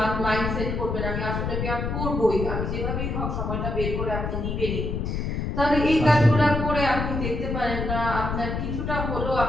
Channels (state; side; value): noise; left; rumble, 2 dB below the sound